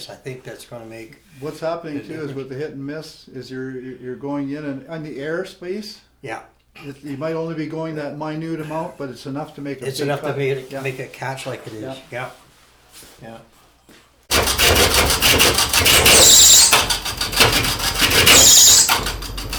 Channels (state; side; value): identical; both; correlation 1.00